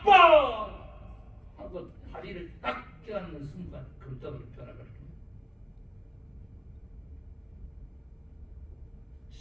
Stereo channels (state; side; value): identical; both; correlation 1.00